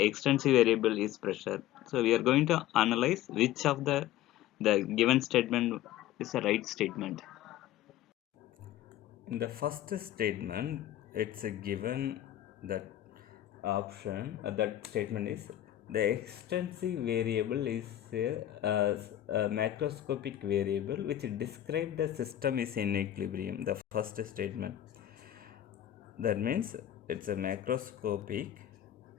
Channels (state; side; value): quieter; right; 12.7 dB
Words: extensive variable is pressure. So we are going to analyze which of the given statement is a right statement. In the first statement, it's a given that option, that statement is the extensive variable is a macroscopic variable which describe the system is in equilibrium. The first statement. That means it's a macroscopic